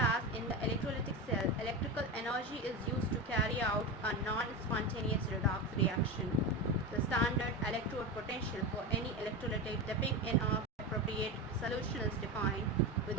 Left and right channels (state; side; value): normal; both; correlation 0.20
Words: in the electrolytic cell, electrical energy is used to carry out a non-spontaneous redox reaction. The standard electrode potential for any electrolytic dipping in an appropriate solution is defined with